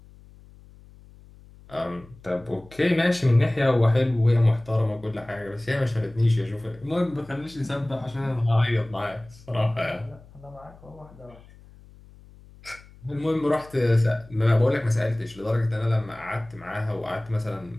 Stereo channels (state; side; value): noise; left; hum, 23 dB below the sound